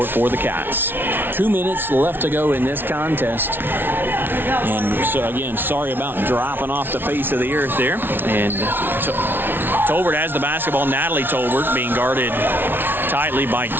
for the Cats. 2 minutes left to go in this contest. And so, again, sorry about dropping off the face of the earth there. And Tolbert has the basketball. Natalie Tolbert being guarded tightly by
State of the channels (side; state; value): left; late; 0.10 ms